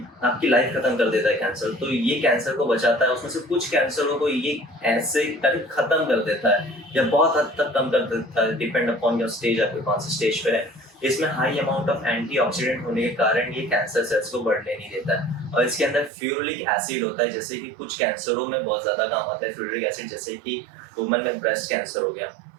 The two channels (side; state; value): left; drops out; at 16.1 s